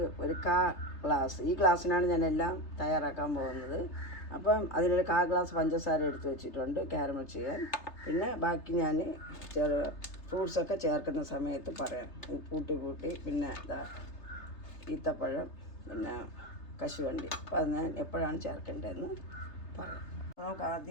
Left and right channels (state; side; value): late; right; 3.3 ms